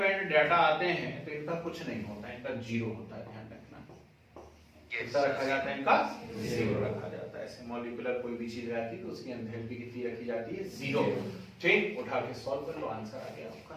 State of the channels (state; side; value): identical; both; correlation 1.00